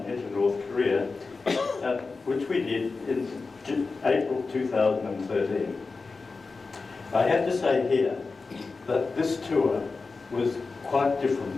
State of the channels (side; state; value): right; quieter; 4.1 dB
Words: into North Korea, which we did in April 2013. I have to say here that this tour was quite